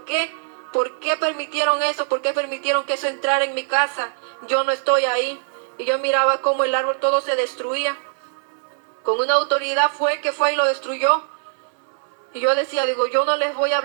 qué? ¿Por qué permitieron eso? ¿Por qué permitieron que eso entrara en mi casa? Yo no estoy ahí. Y yo miraba cómo el árbol todo se destruía. Con una autoridad fue y lo destruyó. Y yo decía, digo, yo no les voy a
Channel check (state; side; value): silent; left; 64 dB below the other